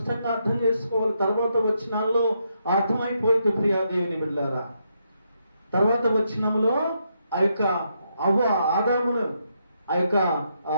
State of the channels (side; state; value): both; inverted; correlation -0.79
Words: అర్థం చేసుకోవాలి. తర్వాత వచనాల్లో అర్థమైపోయింది ప్రియాదేవిని బిడ్డలారా. తర్వాత వచనంలో ఆ యొక్క ఆదామును ఆ యొక్క